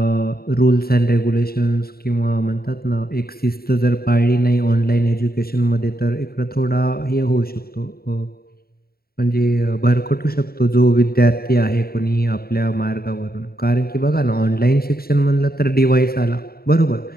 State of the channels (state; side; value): late; right; 0.44 ms